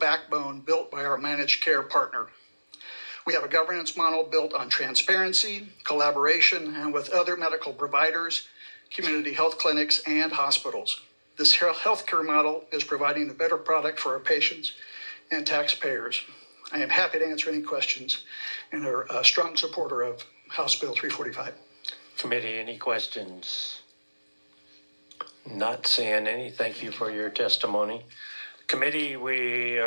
built by our managed care partner. We have a governance model built on transparency, collaboration, and with other medical providers, community health clinics, and hospitals. This healthcare model is providing a better product for our patients and taxpayers. I am happy to answer any questions and are a strong supporter of House Bill 345. Committee, any questions? Not seeing any. Thank you for your testimony. Committee, we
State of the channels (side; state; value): both; inverted; correlation -1.00